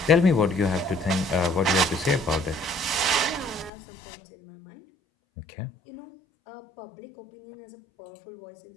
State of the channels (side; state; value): right; drops out; at 3.7 s